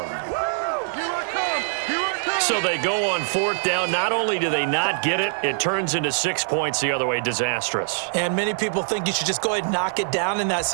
So they go on 4th down. Not only do they not get it, it turns into 6 points the other way. Disastrous. And many people think you should just go ahead and knock it down in that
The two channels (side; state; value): left; silent; 63 dB below the other